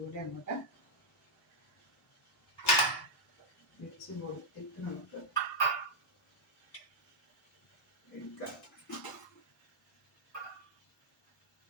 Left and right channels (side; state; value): both; normal; correlation -0.04